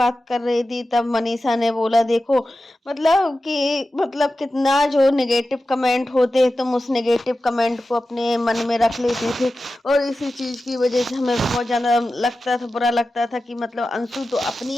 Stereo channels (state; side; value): normal; both; correlation 0.93